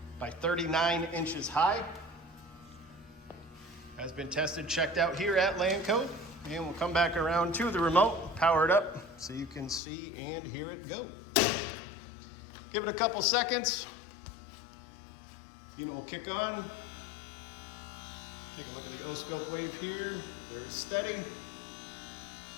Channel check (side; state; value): right; drops out; at 9.8 s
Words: by 39 inches high. Has been tested, checked out here at Lanco. And we'll come back around to the remote, power it up so you can see and hear it go. Give it a couple seconds. Unit will kick on. Take a look at the O-scope wave here, very steady.